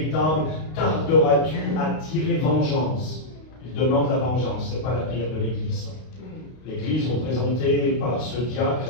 tarderas-tu à tirer vengeance ?» Ils demandent la vengeance, ce n'est pas la prière de l'Église. L'Église, représentée par ce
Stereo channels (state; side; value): late; right; 32 ms